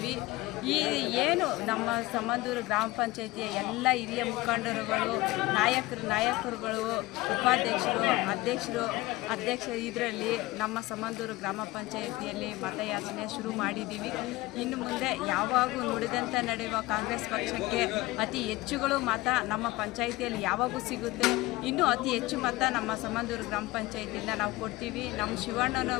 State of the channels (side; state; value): right; quieter; 19.9 dB